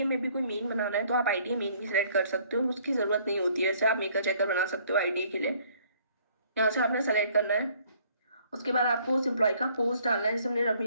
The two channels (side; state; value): both; inverted; correlation -0.61